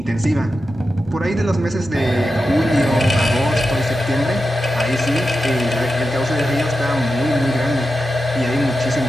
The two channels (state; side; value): normal; both; correlation 0.90